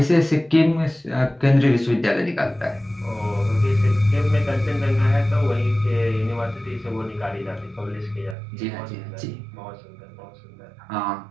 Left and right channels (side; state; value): left; drops out; at 8.3 s